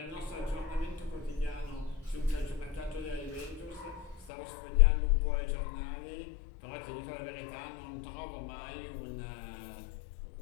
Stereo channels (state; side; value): drops out; right; at 4.3 s